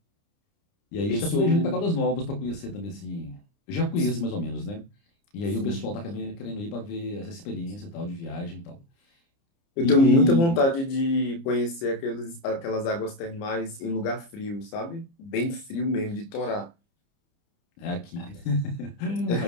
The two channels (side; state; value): right; late; 30 ms